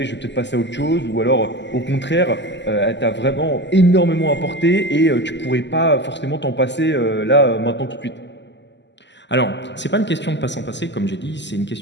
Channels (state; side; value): late; right; 0.51 ms